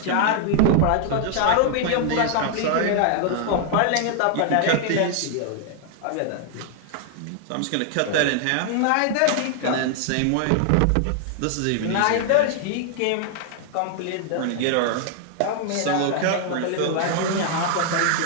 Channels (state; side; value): different; both; correlation 0.00